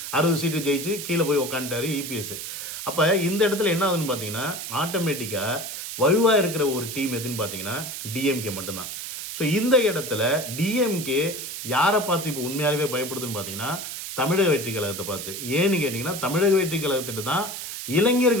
60 சீட்டு ஜெயிச்சு கீழே போய் உக்காந்துட்டாரு இபிஎஸ். அப்போ இந்த இடத்துல என்ன ஆகுதுன்னு பார்த்தீங்கன்னா ஆட்டோமேட்டிக்காக வலுவாக இருக்கிற ஒரு டீம் எதுன்னு பார்த்தீங்கன்னா டிஎம்கே மட்டும்தான். ஸோ இந்த இடத்துல டிஎம்கே யாரை பார்த்து இப்போ உண்மையாகவே பயப்படுதுன்னு பார்த்தீங்கன்னா தமிழக வெற்றி கழகத்தை பார்த்து. ஏன்னு கேட்டிங்கன்னா தமிழக வெற்றி கழகத்திட்டு தான்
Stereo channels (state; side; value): noise; right; hiss, 7 dB below the sound